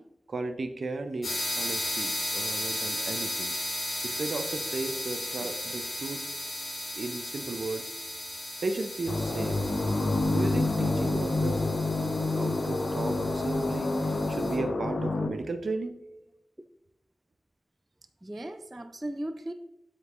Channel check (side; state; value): both; normal; correlation 0.91